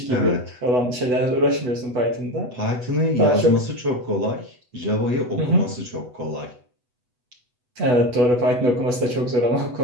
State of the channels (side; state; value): left; late; 8.0 ms